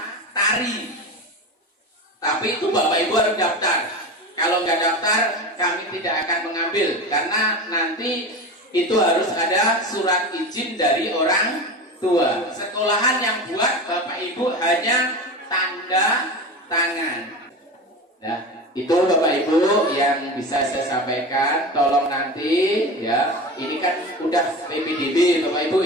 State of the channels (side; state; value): both; normal; correlation 0.27